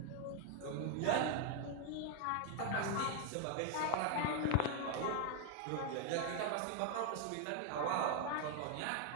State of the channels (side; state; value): both; different; correlation 0.00